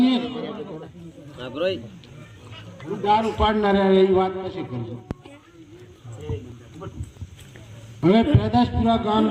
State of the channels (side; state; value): both; identical; correlation 1.00